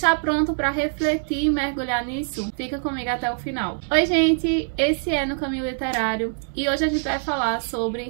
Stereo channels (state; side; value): silent; left; digital silence